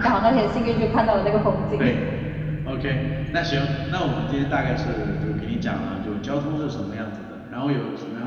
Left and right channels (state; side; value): identical; both; correlation 1.00